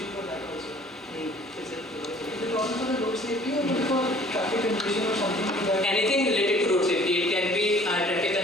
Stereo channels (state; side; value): normal; both; correlation 0.53